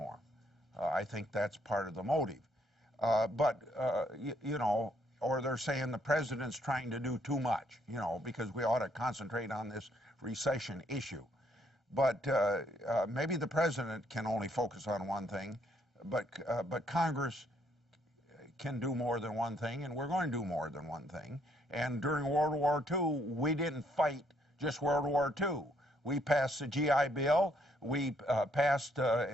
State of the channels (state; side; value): normal; both; correlation 0.70